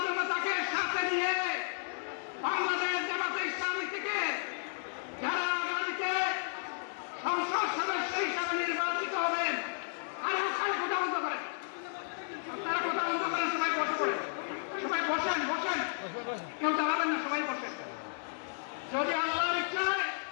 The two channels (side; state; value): right; silent; digital silence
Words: জনতাকে সাথে নিয়ে বাংলাদেশ জামাতে ইসলামী থেকে যারা আগামীতে সংসদ সদস্য হিসাবে নির্বাচিত হবেন, আর ওখানে কথা বন্ধ করেন, তারা কথা বন্ধ করেন, সবাই বসে পড়েন, সবাই বসেন বসেন, কেউ দাঁড়াবেন না, সবাই বসেন। যদি আল্লাহর ইচ্ছায়